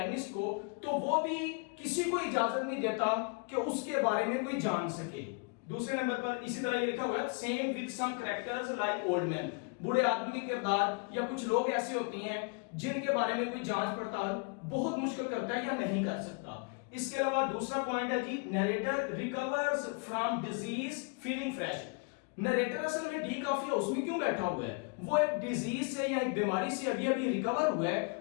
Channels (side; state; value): right; quieter; 33.7 dB